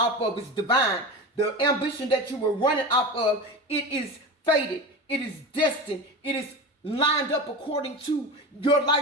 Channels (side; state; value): both; normal; correlation 0.26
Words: of is divine. The ambition that you were running off of, it is fated. It is destined. It is lined up according to your